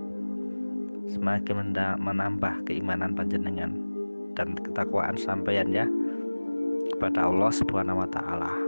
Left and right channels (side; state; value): both; inverted; correlation -1.00